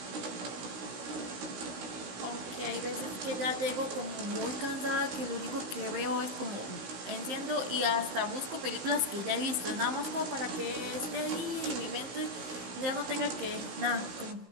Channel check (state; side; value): late; left; 16 ms